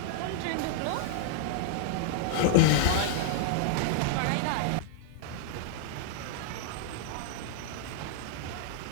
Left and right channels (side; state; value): both; different; correlation -0.01